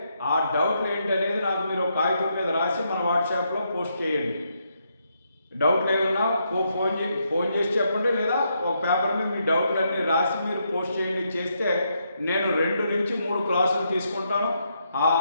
ఆ డౌట్లు ఏంటనేది నాకు మీరు ఒక కాగితం మీద రాసి మన వాట్సాప్లో పోస్ట్ చేయండి. డౌట్లు ఏమన్నా ఫోన్ చేసి చెప్పండి, లేదా ఒక పేపర్ మీద మీ డౌట్లన్నీ రాసి మీరు పోస్ట్ చేయండి. చేస్తే నేను 2 నుంచి 3 క్లాసులు తీసుకుంటాను. ఆ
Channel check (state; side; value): inverted; both; correlation -0.78